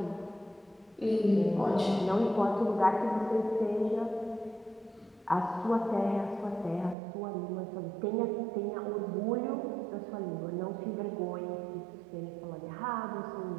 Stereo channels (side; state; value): left; drops out; at 7.0 s